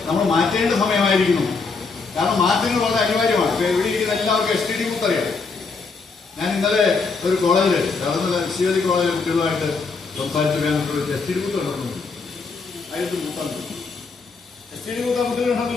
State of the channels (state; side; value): quieter; right; 4.5 dB